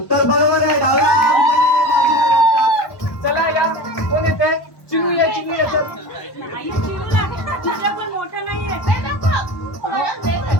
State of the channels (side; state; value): right; late; 1.1 ms